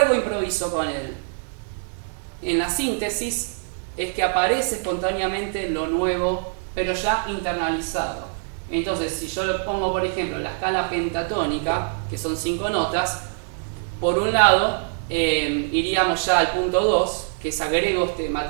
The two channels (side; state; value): left; silent; digital silence